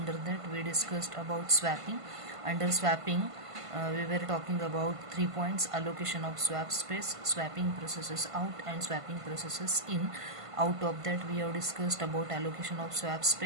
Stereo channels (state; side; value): late; left; 1.5 ms